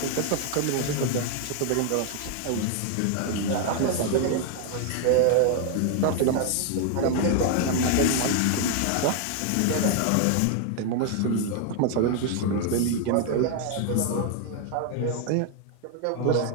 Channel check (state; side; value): different; both; correlation 0.00